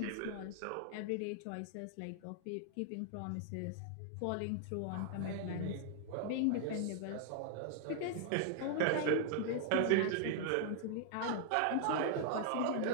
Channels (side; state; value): both; different; correlation 0.00